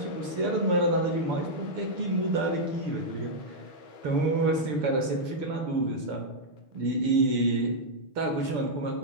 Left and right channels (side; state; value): left; late; 6.9 ms